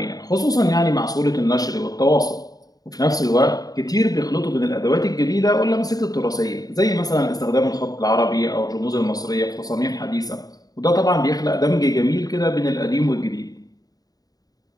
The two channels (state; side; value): late; right; 0.18 ms